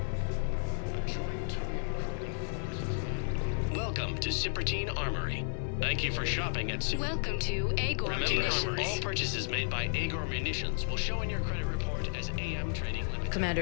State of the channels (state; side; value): silent; right; digital silence